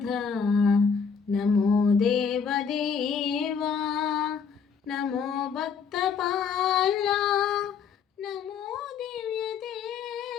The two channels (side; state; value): right; quieter; 6.3 dB